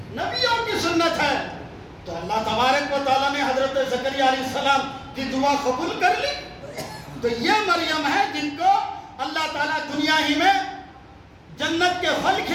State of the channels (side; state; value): both; identical; correlation 1.00